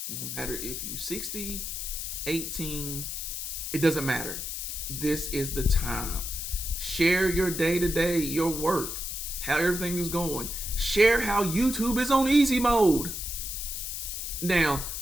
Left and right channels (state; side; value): noise; left; hiss, 5 dB below the sound